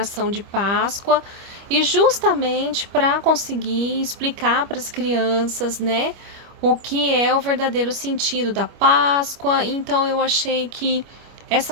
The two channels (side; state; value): left; late; 25 ms